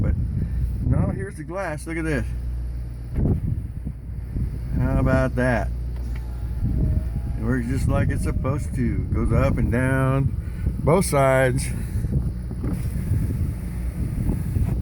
but no, here's the glass. Look at this. How about that? It works just like it's supposed to. Goes up and down both sides.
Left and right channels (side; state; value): both; identical; correlation 1.00